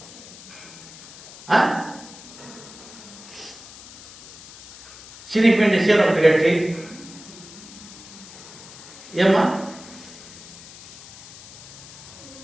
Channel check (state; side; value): noise; left; hiss, 17 dB below the sound